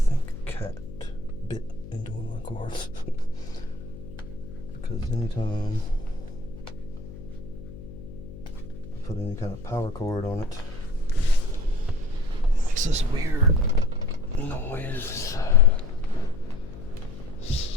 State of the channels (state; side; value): noise; left; hum, 14 dB below the sound